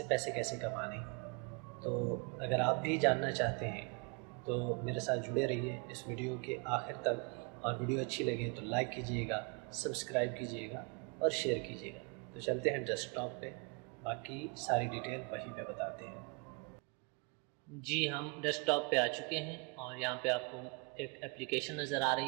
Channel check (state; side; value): quieter; left; 31.6 dB